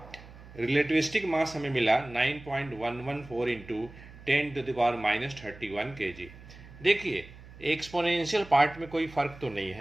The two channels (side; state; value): right; noise; hum, 18 dB below the sound